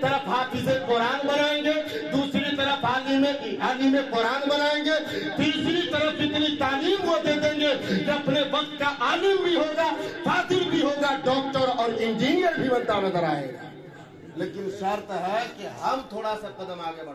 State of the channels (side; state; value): both; identical; correlation 1.00